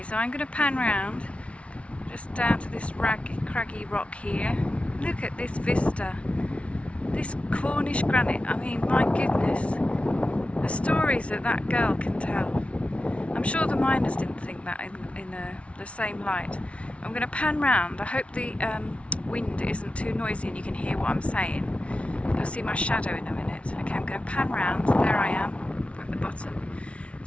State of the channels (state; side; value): late; right; 0.062 ms